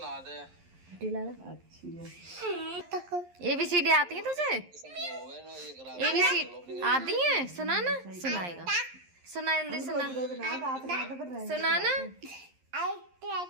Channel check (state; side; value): late; left; 11 ms